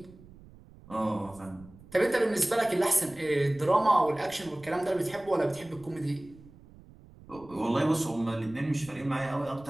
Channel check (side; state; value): right; noise; rumble, 22 dB below the sound